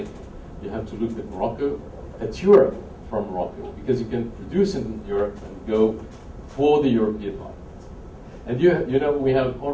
You have to look at Morocco, at Europe from Morocco, because you can produce in Europe and go for the European market. And you know, we have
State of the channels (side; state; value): both; identical; correlation 1.00